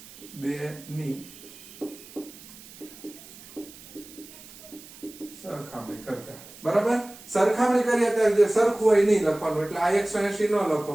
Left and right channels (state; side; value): noise; right; hiss, 19 dB below the sound